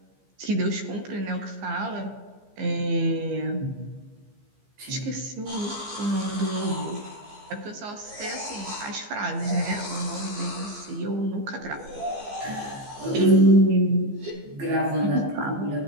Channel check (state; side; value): late; left; 15 ms